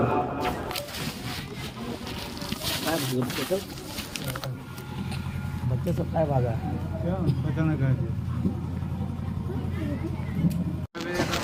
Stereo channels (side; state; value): both; identical; correlation 1.00